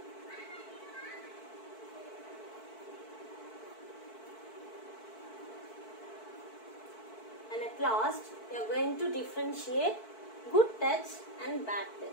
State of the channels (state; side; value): late; right; 4.6 ms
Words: and at last you are going to differentiate good touch and bad